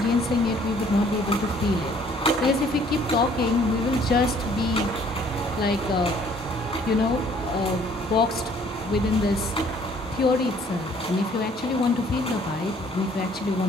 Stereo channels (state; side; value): normal; both; correlation 0.59